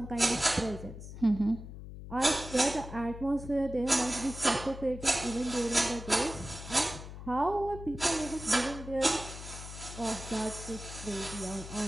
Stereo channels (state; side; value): noise; left; hum, 11 dB below the sound